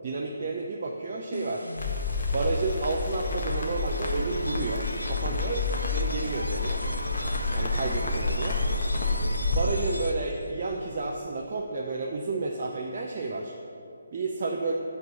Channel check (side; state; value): both; inverted; correlation -0.67